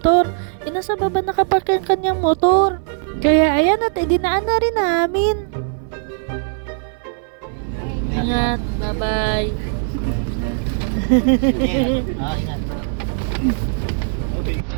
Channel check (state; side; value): silent; left; 60 dB below the other